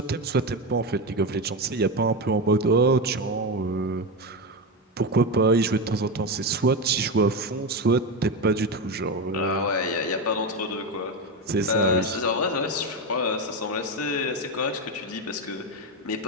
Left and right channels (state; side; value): normal; both; correlation 0.15